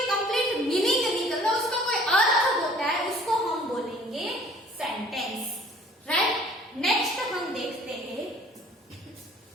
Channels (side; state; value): both; normal; correlation 0.52